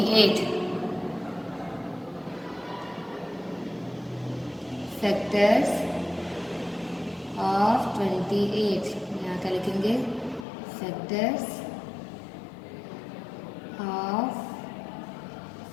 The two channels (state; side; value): drops out; right; at 10.5 s